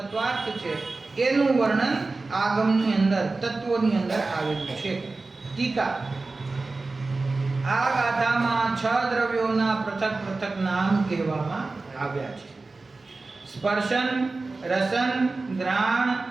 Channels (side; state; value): left; quieter; 3.6 dB